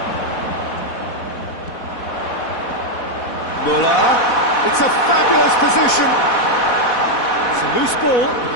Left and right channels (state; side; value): late; right; 4.1 ms